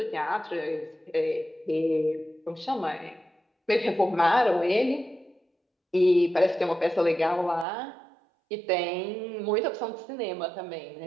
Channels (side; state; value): left; drops out; at 7.7 s